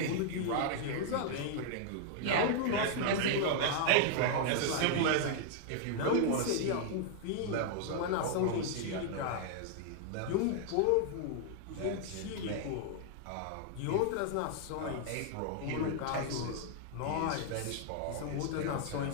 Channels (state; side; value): different; both; correlation 0.00